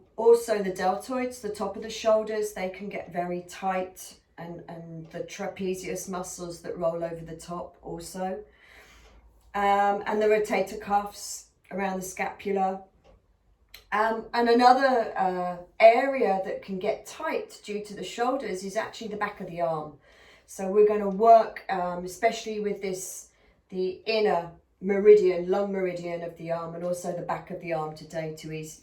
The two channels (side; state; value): both; identical; correlation 1.00